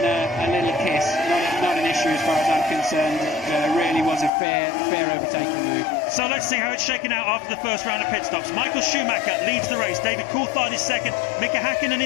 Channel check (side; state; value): right; drops out; at 4.3 s